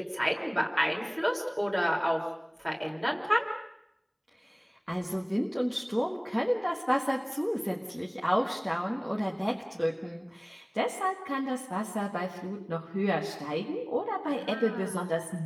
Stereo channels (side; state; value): both; identical; correlation 1.00